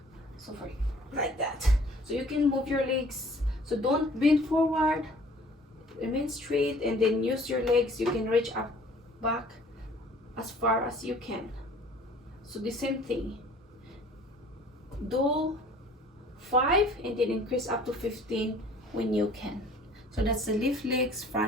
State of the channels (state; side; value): normal; both; correlation 0.52